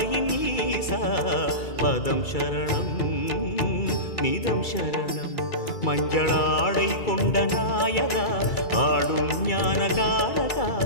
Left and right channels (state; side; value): late; right; 2.3 ms